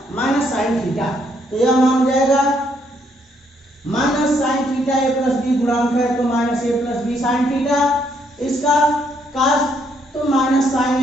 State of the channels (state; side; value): normal; both; correlation 0.71